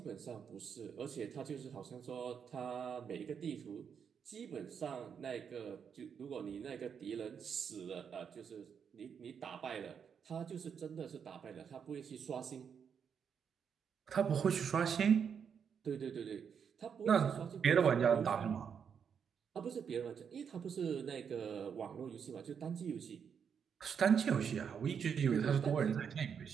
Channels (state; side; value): quieter; left; 7.2 dB